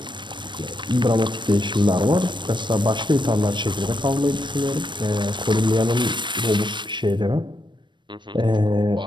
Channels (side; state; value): left; late; 0.22 ms